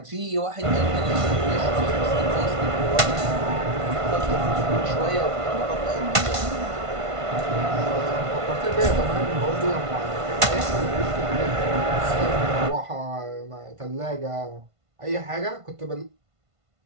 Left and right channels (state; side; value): late; left; 1.5 ms